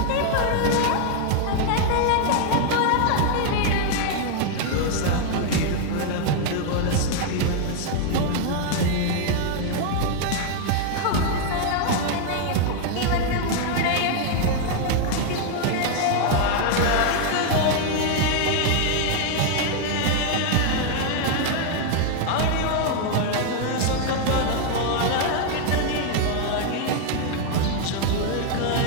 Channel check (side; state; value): both; different; correlation 0.00